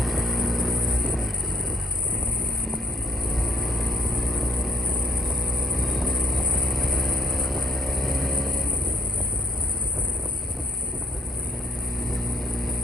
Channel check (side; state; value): both; normal; correlation 0.64